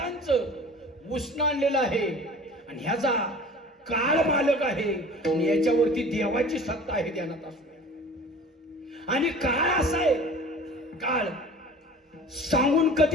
उष्ण आणलेलं आहे आणि ह्याचा काळ मालक आहे आणि याच्यावरती देवाची सत्ता आहे ध्यानात असू द्या. आणि काळ असा आहे, काळ सांगून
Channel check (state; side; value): normal; both; correlation 0.43